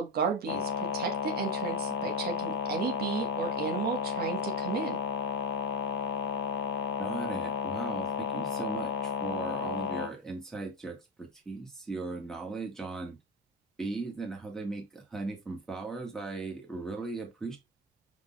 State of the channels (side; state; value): both; normal; correlation 0.11